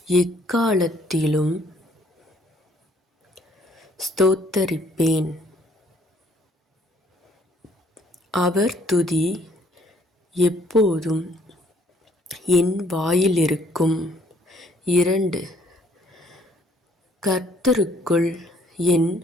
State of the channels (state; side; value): normal; both; correlation 0.64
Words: எக்காலத்திலும் ஸ்தோத்தரிப்பேன். அவர் துதி எப்போதும் என் வாயிலிருக்கும். 2. கர்த்தருக்குள் என்